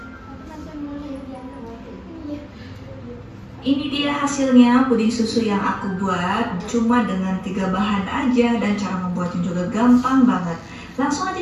Ini dia hasilnya puding susu yang aku buat cuma dengan 3 bahan aja dan cara membuatnya juga gampang banget. Langsung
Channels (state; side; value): identical; both; correlation 1.00